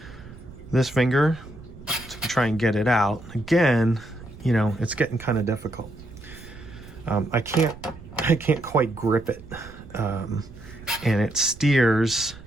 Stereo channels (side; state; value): right; noise; rumble, 17 dB below the sound